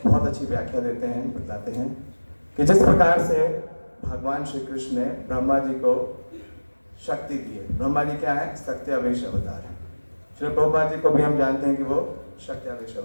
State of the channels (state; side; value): inverted; both; correlation -1.00